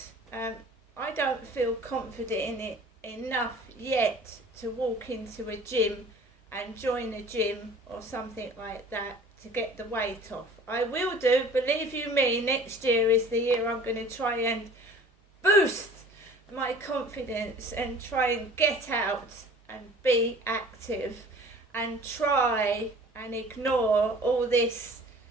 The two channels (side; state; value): both; normal; correlation 0.47